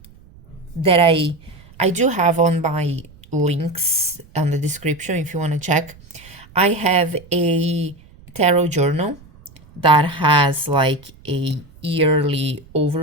that I do have on my links on the description if you want to check. I have a tarot journal that has like a yearly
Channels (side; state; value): right; noise; rumble, 24 dB below the sound